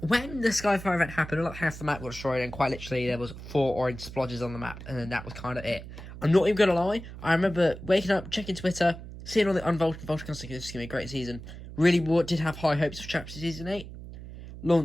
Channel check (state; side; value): noise; right; hum, 13 dB below the sound